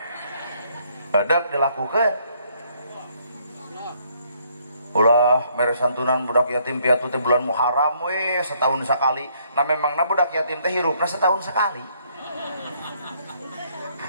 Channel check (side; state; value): both; inverted; correlation -0.68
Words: hedeg dilakukeun ulah mere santunan budak yatim piatu teh bulan Muharram we setahun sekali nah memangna budak yatim teh hirupna setahun sekali